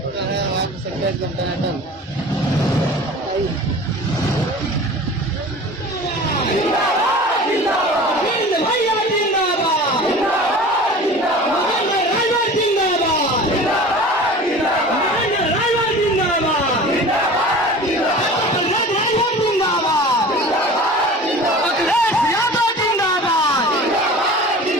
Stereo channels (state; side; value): normal; both; correlation 0.39